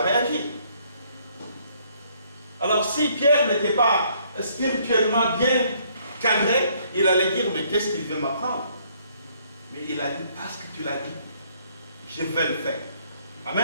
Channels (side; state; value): both; inverted; correlation -0.65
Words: Alors si Pierre n'était pas spirituellement bien cadré, il allait dire, mais qu'est-ce qu'il veut m'apprendre? Mais il a dit, parce que tu l'as dit, je vais le faire.